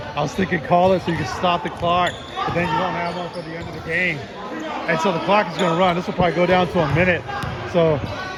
I was thinking call it so you can stop the clock, but then you don't have one for the end of the game. And so the clock is going to run. This will probably go down to a minute. So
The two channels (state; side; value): identical; both; correlation 1.00